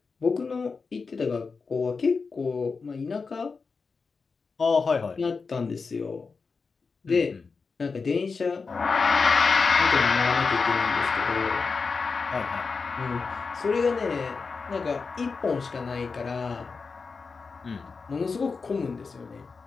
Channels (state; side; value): quieter; right; 4.7 dB